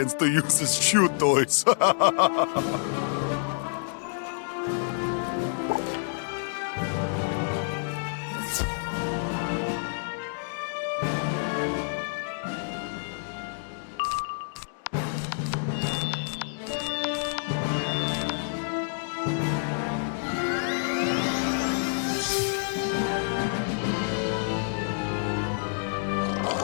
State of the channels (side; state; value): right; silent; digital silence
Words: to use as shoe toys.